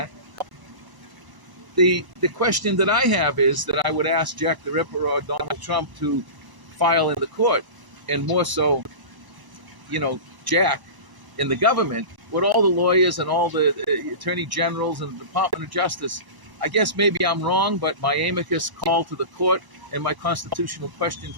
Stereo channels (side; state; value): left; late; 1.0 ms